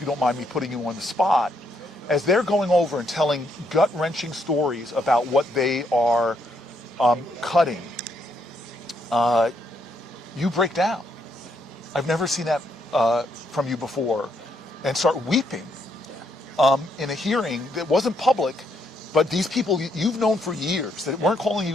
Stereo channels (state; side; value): normal; both; correlation 0.75